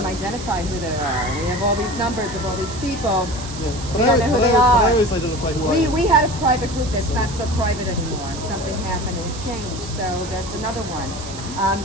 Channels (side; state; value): right; noise; hiss, 12 dB below the sound